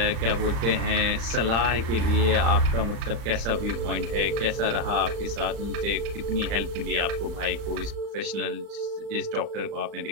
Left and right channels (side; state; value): left; late; 35 ms